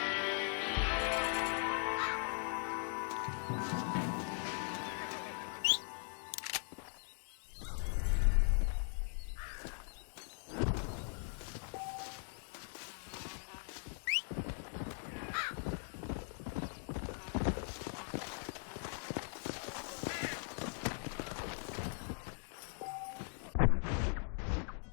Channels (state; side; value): silent; right; 51 dB below the other